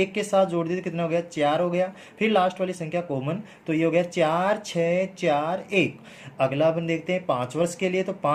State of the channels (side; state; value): both; identical; correlation 1.00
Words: के साथ जोड़ देते, कितना हो गया, 4 हो गया। फिर लास्ट वाली संख्या कॉमन, तो ये हो गया 4, 6, 4, 1। अगला अपन देखते हैं 5 वर्ष के लिए। तो